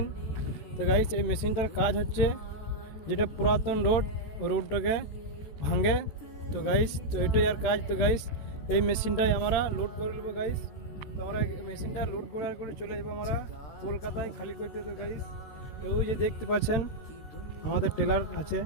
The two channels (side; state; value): right; late; 14 ms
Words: তো গাইস, এই মেশিনটার কাজ হচ্ছে যেটা পুরাতন রোডটাকে ভাঙে। তো গাইস, তো এটাই আর কাজ। তো গাইস, এই মেশিনটাই আমরা লোড করে নেবো গাইস। তো আমরা মেশিনটা লোড করে চলে যাবো আমরা কলকাতায় খালি করতে। তো গাইস, ওই যে দেখতে পাচ্ছেন আমাদের টেলার আছে।